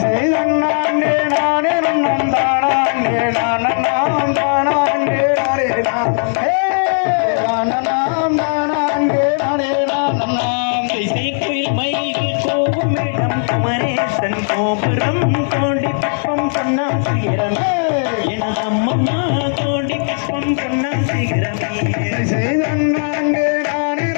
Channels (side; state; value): right; silent; digital silence